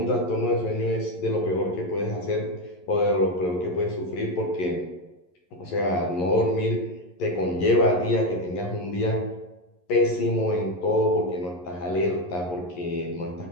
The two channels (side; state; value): right; late; 11 ms